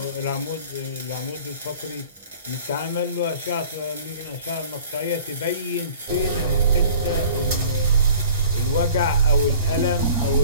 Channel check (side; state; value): both; inverted; correlation -0.46